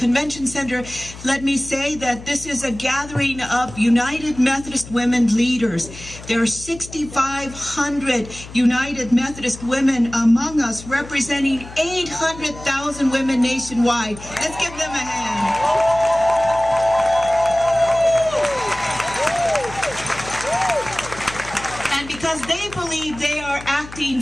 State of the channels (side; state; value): left; noise; hum, 15 dB below the sound